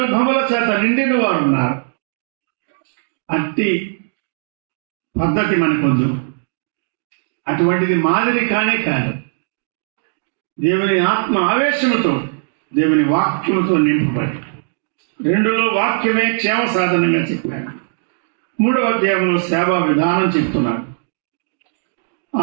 చేత నిండిన వారు ఉన్నారు. అట్టి పద్ధతి మనకొద్దు, అటువంటిది మాదిరి కానే కాదు. దేవుని ఆత్మ ఆవేశముతో, దేవుని వాక్యముతో నింపబడి, 2లో వాక్యమే క్షేమ సాధనంగా చెప్పాడు, 3వ అధ్యాయంలో సేవా విధానం చెప్తున్నాడు.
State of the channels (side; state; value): left; silent; digital silence